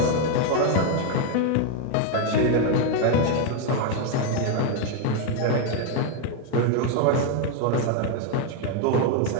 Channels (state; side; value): different; both; correlation 0.01